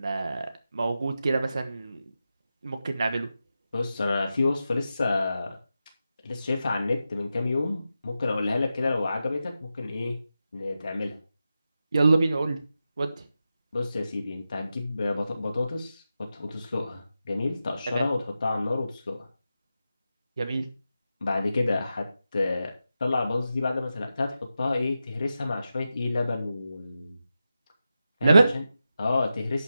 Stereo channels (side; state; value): both; inverted; correlation -0.90